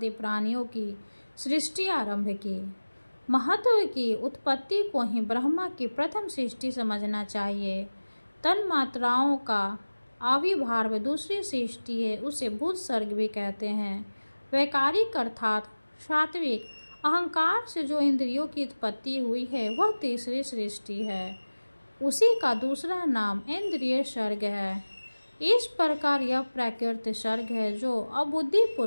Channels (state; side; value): inverted; both; correlation -1.00